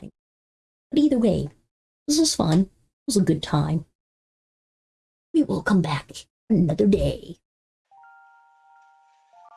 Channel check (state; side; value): identical; both; correlation 1.00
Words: But either way, this was fun. It was a good time. We will come back another day.